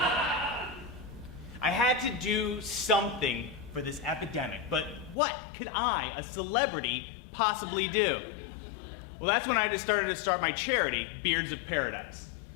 I had to do something for this epidemic, but what could I, a celebrity, possibly do? Well, that's when I just started to start my charity, Beards of Paradise.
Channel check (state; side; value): drops out; right; at 5.2 s